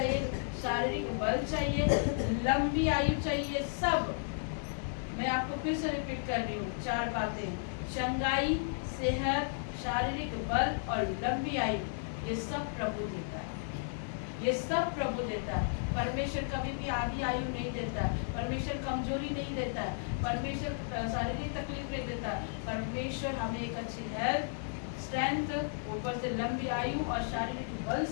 शारीरिक बल चाहिए, लंबी आयु चाहिए, सब। मैं आपको फिर से रिपीट कर रही हूँ 4 बातें। चंगाई, सेहत, शारीरिक बल और लंबी आयु, ये सब प्रभु देता है। ये सब प्रभु देता है। परमेश्वर कभी भी आधी आयु नहीं देता है। परमेश्वर कमजोरी नहीं देता है। परमेश्वर शारीरिक तकलीफ नहीं देता है। परमेश्वर हमें एक अच्छी हेल्थ, स्ट्रेंथ, ऊपर से लंबी आयु और शारीरिक बल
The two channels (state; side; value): silent; right; digital silence